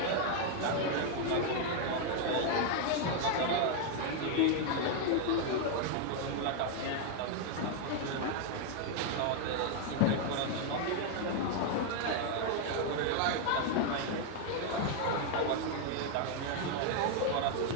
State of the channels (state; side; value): different; both; correlation 0.00